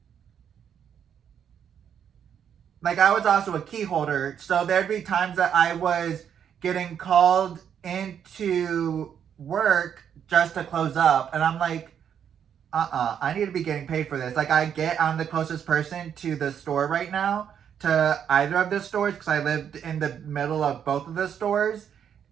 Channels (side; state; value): left; quieter; 8.5 dB